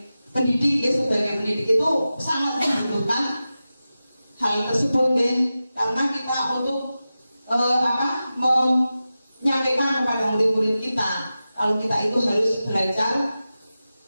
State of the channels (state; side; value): inverted; both; correlation -0.94